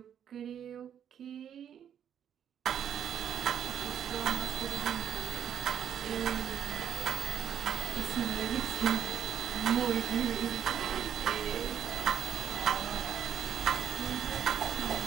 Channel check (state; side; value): quieter; left; 9.1 dB